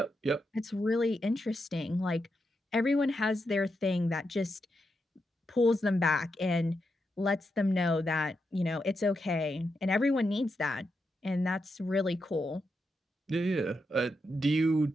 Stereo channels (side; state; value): both; normal; correlation 0.85